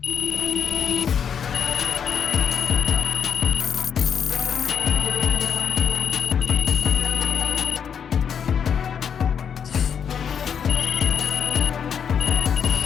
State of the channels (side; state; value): right; quieter; 7.6 dB